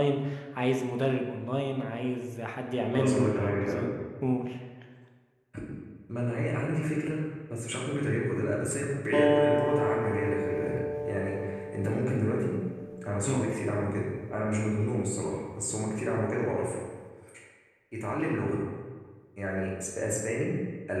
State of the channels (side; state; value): both; identical; correlation 1.00